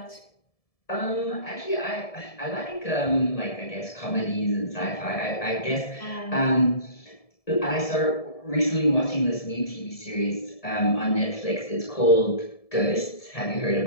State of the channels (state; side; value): late; right; 1.7 ms